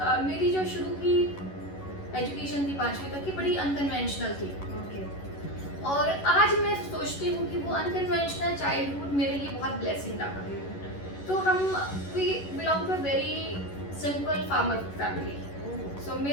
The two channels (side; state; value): right; late; 11 ms